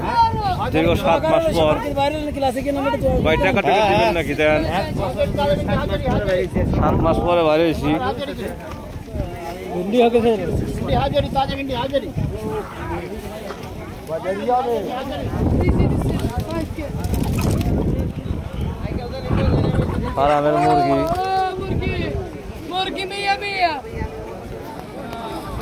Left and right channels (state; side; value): identical; both; correlation 1.00